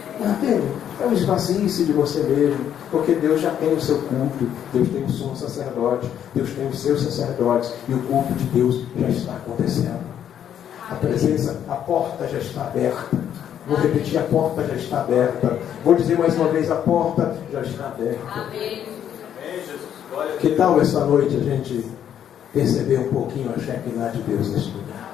Entende? É um esvazie-se de você mesmo, porque Deus já tem o seu culto, Deus tem o sumo sacerdote, Deus tem os seus sacerdotes, e o culto de Deus já está acontecendo. A presença, a porta já está aberta. Vou repetir, a porta já está aberta. Vou dizer mais uma vez, a porta já está aberta. Que tal essa noite a gente perceber um pouquinho a Shekinah de Deus neste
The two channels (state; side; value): quieter; right; 9.7 dB